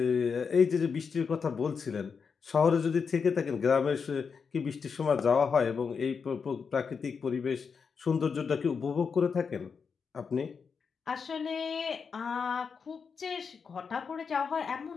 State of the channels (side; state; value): right; quieter; 5.8 dB